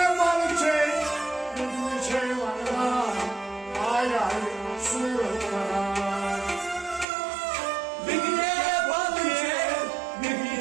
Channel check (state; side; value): drops out; left; at 7.1 s